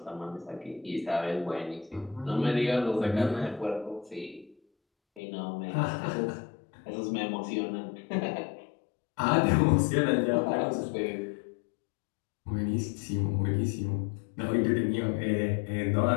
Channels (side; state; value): right; drops out; at 5.2 s